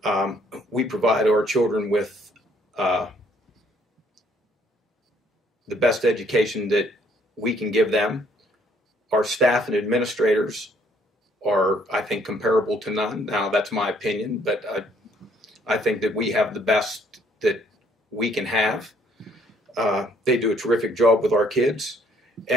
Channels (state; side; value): normal; both; correlation 0.64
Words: We provide our children with the best education that we can give them. Our staff and administrators are, I think, comparable to none. Now, that's my opinion, but I think that we have the best that we can have. They do a terrific job with our kids,